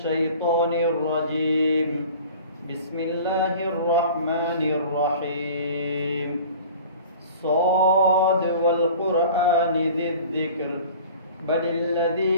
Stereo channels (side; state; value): both; inverted; correlation -0.43